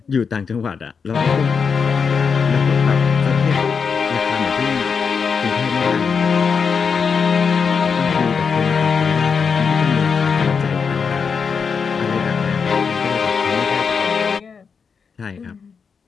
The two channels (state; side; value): quieter; right; 5.9 dB